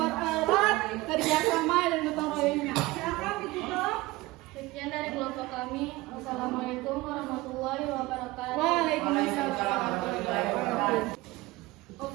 kerjasama dan gotong royongnya. Silakan ditutup. Sekian dari kelompok kami. Assalamualaikum warahmatullahi wabarakatuh. Waalaikumsalam.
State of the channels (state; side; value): quieter; left; 20.1 dB